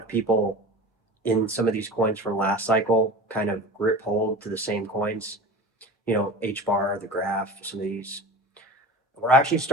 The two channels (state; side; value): normal; both; correlation 0.35